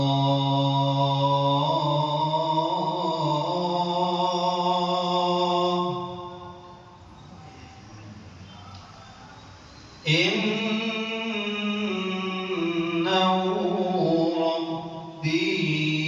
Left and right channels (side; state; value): both; identical; correlation 1.00